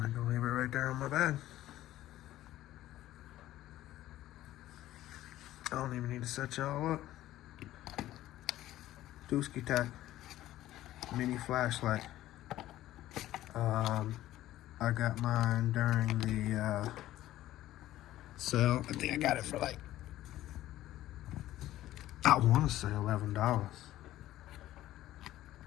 I can leave it right there on my bag. I don't even need to set y'all up. TuskiTac mini flashlight. I got mine during the sale. I think I got it for like, I want to say $11.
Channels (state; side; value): quieter; right; 14.5 dB